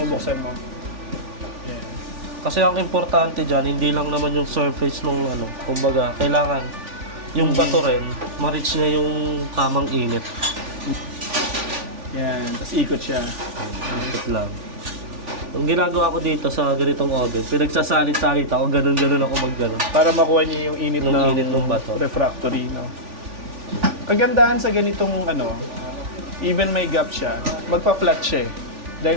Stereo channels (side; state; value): left; late; 3.4 ms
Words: mo. Ayan. Kasi ang importante dyan, hindi lang naman yung surface nung kumbaga, kailangan yung bato rin, ma-reach niya yung tamang init. Yan, tapos ikot siya. Ikot lang. Ang ginagawa ko dito sa ganitong oven, pinagsasalit-salit ako, ganun-ganun ako mag-ganun. Para makuha niya yung init, ng bato. Refractory, no? Kagandahan sa ganitong even may gap siya, magpa-flat siya eh.